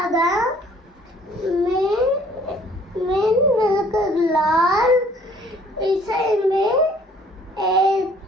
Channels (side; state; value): both; normal; correlation 0.58